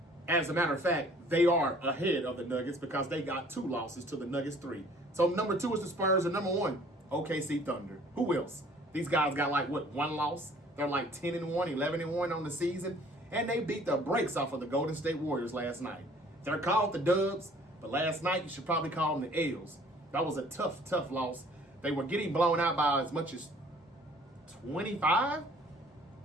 As a matter of fact, they are ahead of the Nuggets because they got 2 losses to the Nuggets 3. So number 2 is the Spurs, and number 1, OKC Thunder. Who else? These guys got like, what, 1 loss? They're like 10-1, 11-1 on the season. And they beat the brakes off of the Golden State Warriors last night. They're called the Dubs, but last night you should probably call them the L's. That was a tough loss. They were getting blown out by as much as 25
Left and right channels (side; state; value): both; normal; correlation 0.54